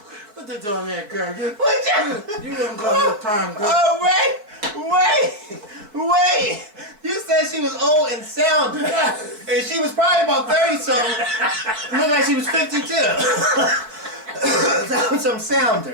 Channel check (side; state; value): left; late; 4.7 ms